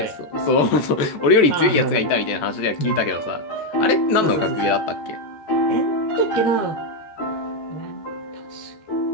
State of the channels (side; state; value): right; late; 14 ms